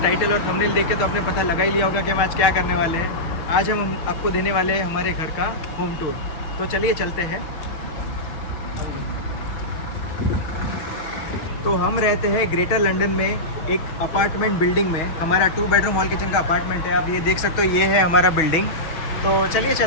टाइटल और थंबनेल देख के तो आपने पता लगा ही लिया होगा कि हम आज क्या करने वाले हैं। आज हम आपको देने वाले हैं हमारे घर का होम टूर। तो चलिए चलते हैं। तो हम रहते हैं ग्रेटर लंदन में एक अपार्टमेंट बिल्डिंग में। हमारा 2 बेडरूम हॉल किचन का अपार्टमेंट है। आप ये देख सकते हो, ये है हमारा बिल्डिंग। तो चलिए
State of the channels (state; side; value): late; right; 6.3 ms